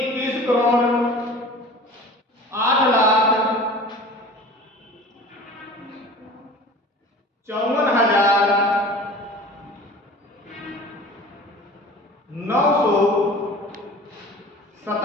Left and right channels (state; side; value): normal; both; correlation 0.41